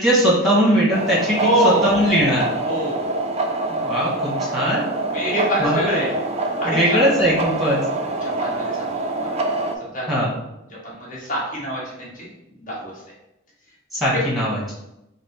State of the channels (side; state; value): both; normal; correlation 0.20